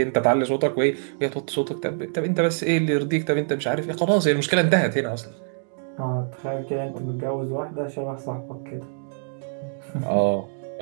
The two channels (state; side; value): silent; left; digital silence